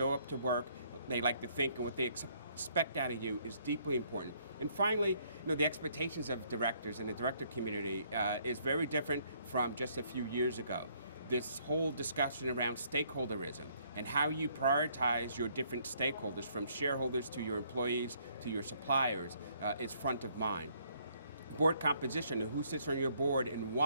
up to work, they like to think, and what they expect out of you is deeply important. And finally, the expectations of directors and the director community is very different from just a few years ago. This whole discussion around stakeholderism and how you prioritize your different stakeholders, from shareholders to your employees to your suppliers, is front of mind. Board composition and who sits on your board and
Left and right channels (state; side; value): inverted; both; correlation -0.67